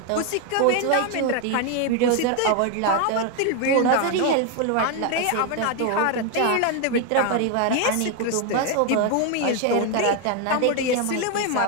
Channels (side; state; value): both; different; correlation 0.01